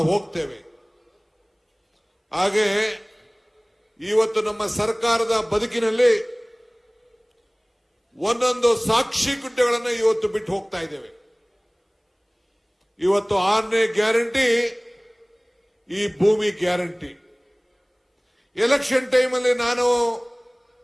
ಹೋಗ್ತೇವೆ. ಹಾಗೆ ಇವತ್ತು ನಮ್ಮ ಸರ್ಕಾರದ ಬದುಕಿನಲ್ಲಿ ಒಂದೊಂದು ಸಾಕ್ಷಿ ಗುಡ್ಡೆಗಳನ್ನು ಇವತ್ತು ಬಿಟ್ಟು ಹೋಗ್ತಾ ಇದ್ದೇವೆ. ಇವತ್ತು 6ನೇ ಗ್ಯಾರಂಟಿ ಈ ಭೂಮಿ ಗ್ಯಾರಂಟಿ. ಎಲೆಕ್ಷನ್ ಟೈಮಲ್ಲಿ ನಾನು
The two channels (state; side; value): identical; both; correlation 1.00